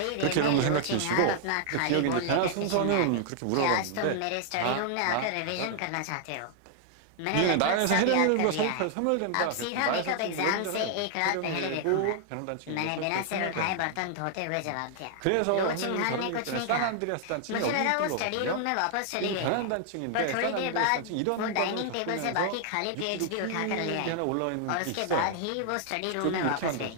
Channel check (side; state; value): both; different; correlation 0.00